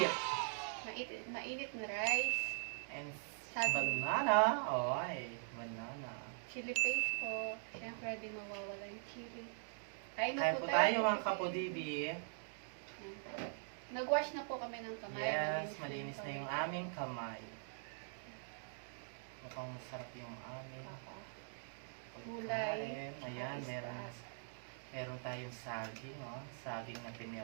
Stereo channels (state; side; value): silent; left; digital silence